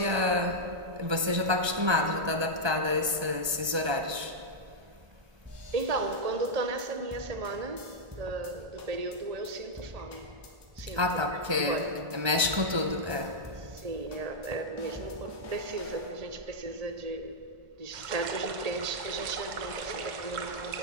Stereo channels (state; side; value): late; left; 1.3 ms